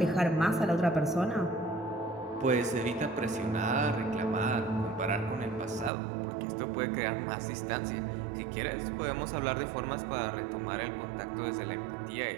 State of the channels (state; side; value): drops out; left; at 5.9 s